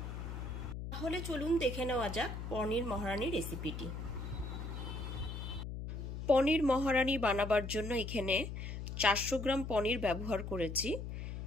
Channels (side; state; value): left; noise; hum, 6 dB below the sound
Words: তাহলে চলুন দেখে নেওয়া যাক পনির মহারানি রেসিপিটি। পনির মহারানি বানাবার জন্য এখানে 400 গ্রাম পনির ব্যবহার করেছি।